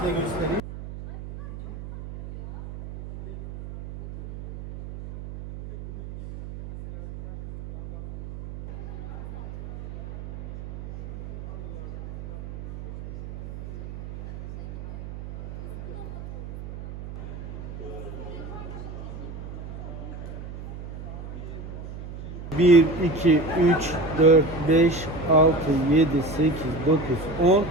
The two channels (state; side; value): noise; right; hum, 11 dB below the sound